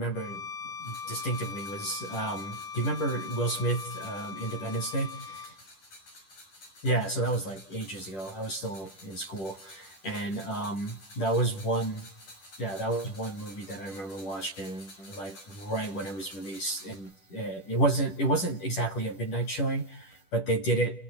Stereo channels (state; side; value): late; right; 10 ms